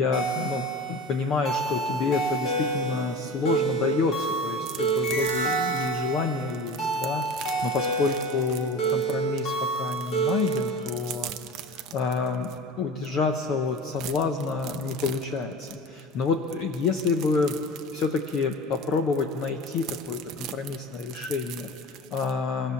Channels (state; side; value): normal; both; correlation 0.35